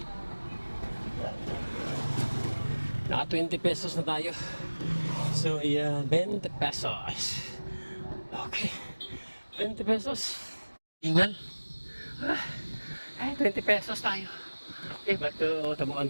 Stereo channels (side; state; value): both; inverted; correlation -1.00